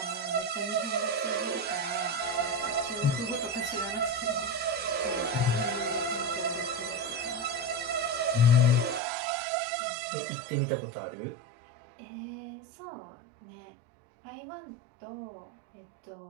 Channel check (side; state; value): left; drops out; at 9.0 s